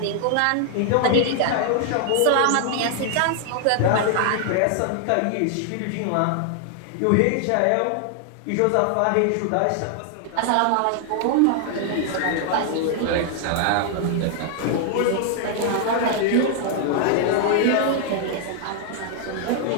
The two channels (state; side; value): different; both; correlation 0.00